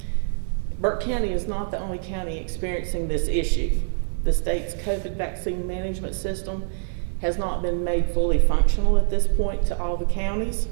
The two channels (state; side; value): silent; left; 62 dB below the other